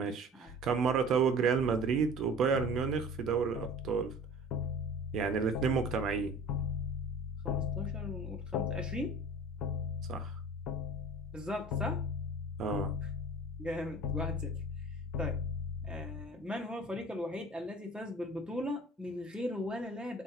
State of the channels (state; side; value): normal; both; correlation 0.43